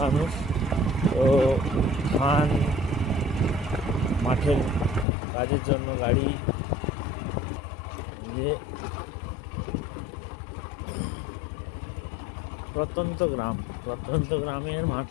মানুষ, তো ধান মাঠের কাজের জন্য গাড়ি ইয়ে। প্রত্যন্ত গ্রামের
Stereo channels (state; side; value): drops out; right; at 5.1 s